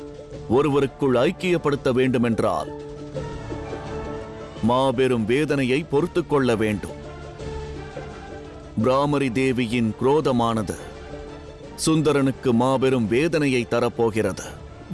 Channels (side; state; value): both; identical; correlation 1.00